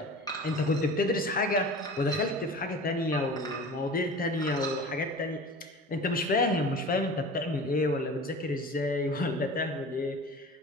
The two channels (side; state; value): both; normal; correlation 0.37